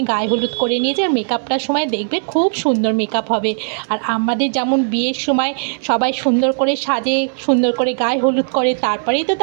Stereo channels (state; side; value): silent; left; 63 dB below the other